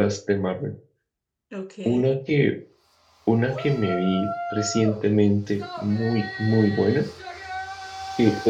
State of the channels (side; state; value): both; identical; correlation 1.00